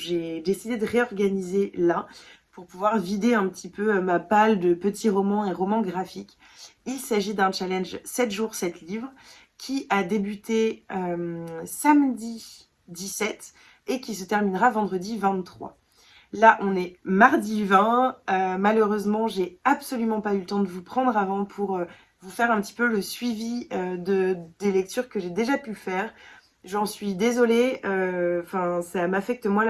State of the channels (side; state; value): both; identical; correlation 1.00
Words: décidé de réorganiser là pour pouvoir vider un petit peu ma palle de petits romans et romans graphiques. Il s'agit d'un challenge 7 jours, 7 livres qui a débuté samedi 17 et qui se terminera vendredi 23. Là, on est mardi 20. Malheureusement, j'ai absolument pas eu le temps de vous prendre avant pour vous faire un petit peu le suivi des lectures que j'ai déjà pu faire. J'en suis désolée. Enfin, ça m'affecte moi